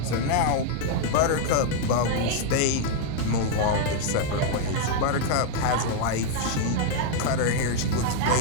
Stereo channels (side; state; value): both; different; correlation 0.00